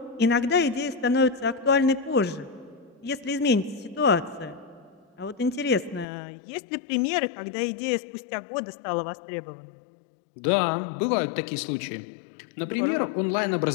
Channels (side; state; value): right; drops out; at 6.1 s